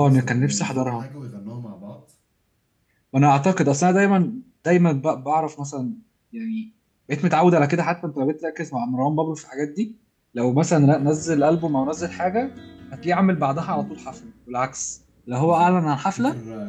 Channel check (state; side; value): identical; both; correlation 1.00